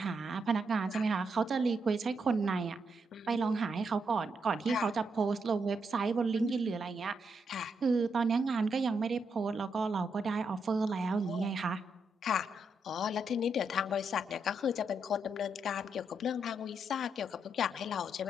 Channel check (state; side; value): normal; both; correlation 0.80